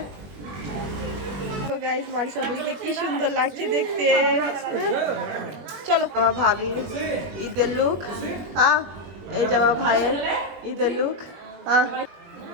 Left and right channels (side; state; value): left; late; 20 ms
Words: তো গাইস, মারিসা বুড়িকে কি সুন্দর লাগছে দেখতে। চলো, আমার ভাবির ঈদের লুক, হ্যাঁ। এই যে আমার ভাইয়ের ঈদের লুক, হ্যাঁ।